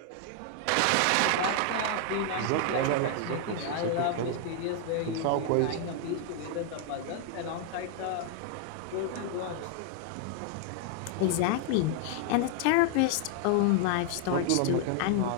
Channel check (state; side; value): different; both; correlation 0.00